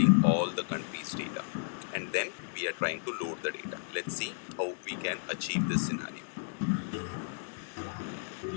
all the country's data, and then we are trying to load the data. Let's see how we can achieve this scenario.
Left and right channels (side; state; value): right; silent; 56 dB below the other